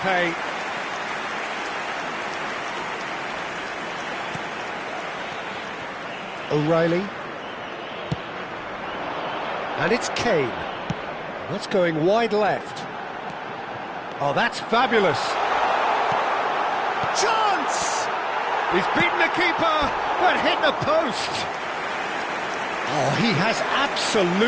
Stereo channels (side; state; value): both; identical; correlation 1.00